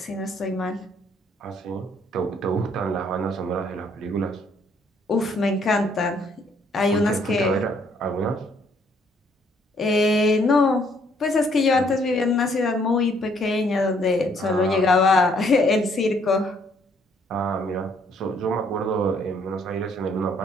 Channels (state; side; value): normal; both; correlation 0.66